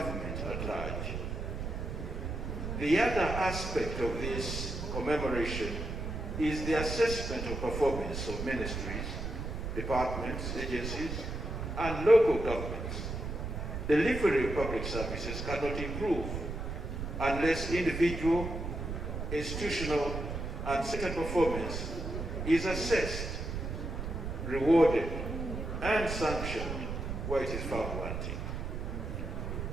at large. The other aspect of this commemoration is the assessment of performance of ministries, departments, agencies, and local governments. Delivery of public services cannot improve unless individual, institutional, and sector performance is assessed, rewarded, and sanctioned where it is found wanting.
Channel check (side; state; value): right; noise; rumble, 4 dB below the sound